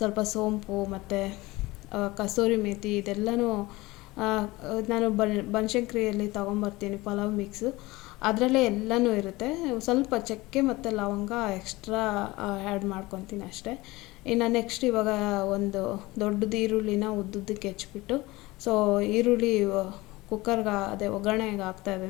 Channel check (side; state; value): right; quieter; 20.8 dB